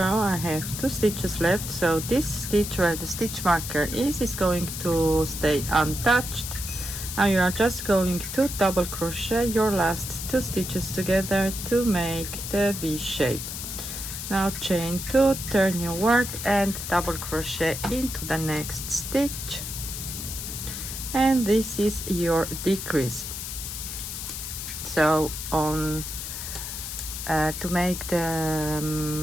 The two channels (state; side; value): noise; left; hiss, 7 dB below the sound